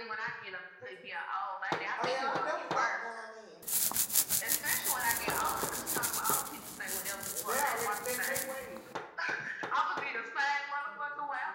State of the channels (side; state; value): both; identical; correlation 1.00